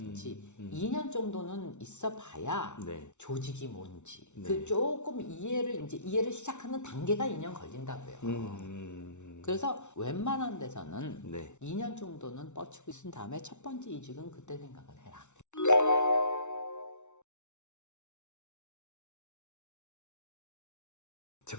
2년 정도는 있어 봐야 조직이 뭔지 그 조금 이해를 시작하는 단계가 2년 걸린다고요. 그래서 웬만한 데서는 2년 정도는 뻗치고 있은 다음에 첫 번째 이직은 그때 생각을 해라.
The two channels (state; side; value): late; right; 0.83 ms